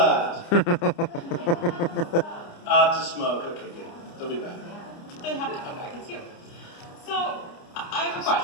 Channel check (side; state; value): right; late; 29 ms